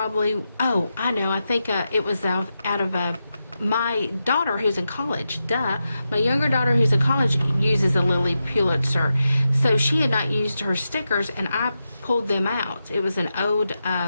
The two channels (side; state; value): both; inverted; correlation -0.88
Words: know, I think it was out of my daughter who's in college. My younger daughter who's in college uses a Lilly Pulitzer. So she had not used her stickers, and I pulled them out. It was an old